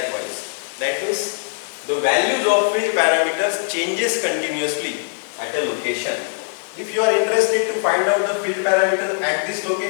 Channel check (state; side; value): silent; right; digital silence